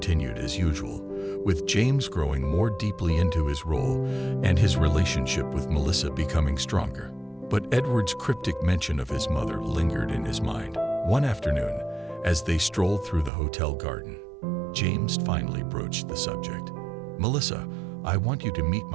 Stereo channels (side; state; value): left; drops out; at 13.3 s